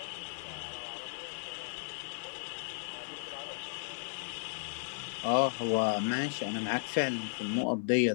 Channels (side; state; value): right; silent; digital silence